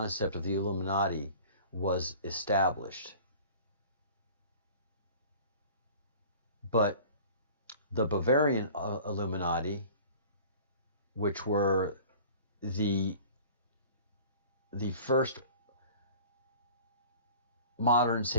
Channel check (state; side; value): inverted; both; correlation -0.45